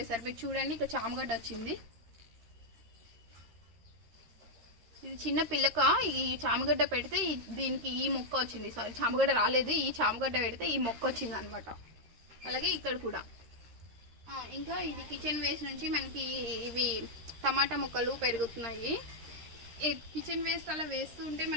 మీరు చూడండి ఇక్కడ చామగడ్డ వచ్చింది. ఇది చిన్న పిల్లక. ఈ చామగడ్డ పెడితే దీనికి ఈ మొక్క వచ్చింది. సారీ, చామగడ్డ రాలేదు. ఈ చామగడ్డ పెడితే ఈ మొక్క వచ్చింది అనమాట. అలాగే ఇక్కడ కూడా. ఇంకా ఇది కిచెన్ వేస్ట్ నుంచి మనకి ఇవి టమాటా మొక్కలు పెరుగుతున్నాయి. కిచెన్ వేస్ట్ అలా వేస్తూ ఉంటే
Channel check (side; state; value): left; late; 13 ms